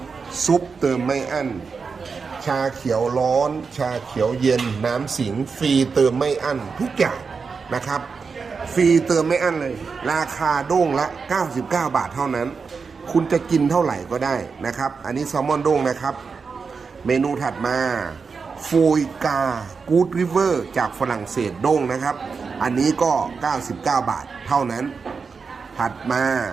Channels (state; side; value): quieter; left; 5.2 dB